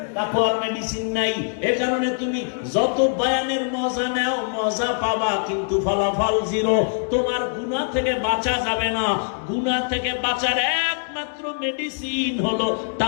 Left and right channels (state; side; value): silent; right; digital silence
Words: তাকওয়ার মেডিসিন নাই। এর কারণে তুমি যত বয়ানের মজা নাও, মজা পাবা, কিন্তু ফলাফল জিরো। তোমার গুনাহ থেকে বাঁচা যাবে না। গুনাহ থেকে বাঁচার একমাত্র মেডিসিন হলো